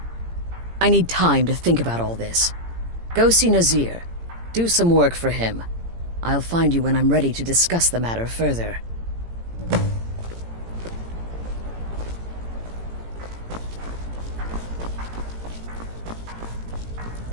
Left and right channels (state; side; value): late; left; 18 ms